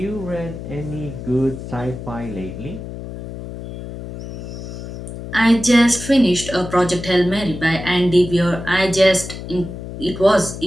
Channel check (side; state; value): left; noise; hum, 10 dB below the sound